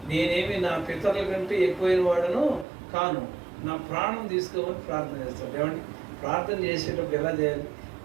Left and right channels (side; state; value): left; drops out; at 2.7 s